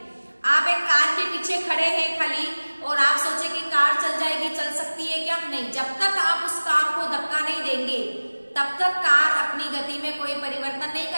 आप एक कार के पीछे खड़े हैं खाली और आप सोचे कि कार चल जाएगी, चल सकती है क्या? नहीं। जब तक आप उस कार को धक्का नहीं देंगे तब तक कार अपनी गति में कोई परिवर्तन नहीं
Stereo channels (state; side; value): inverted; both; correlation -1.00